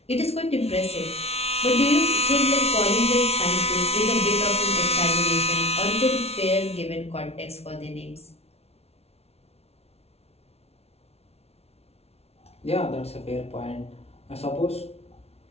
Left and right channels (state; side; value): late; right; 0.30 ms